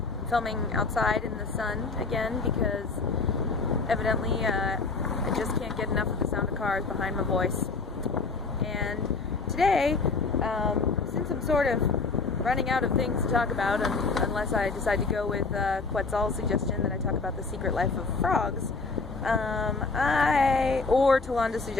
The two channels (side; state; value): right; quieter; 4.1 dB